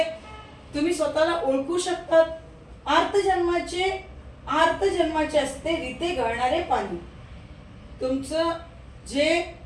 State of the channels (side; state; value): both; identical; correlation 1.00